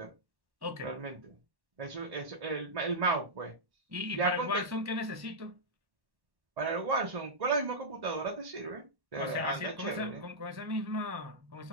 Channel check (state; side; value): late; left; 1.1 ms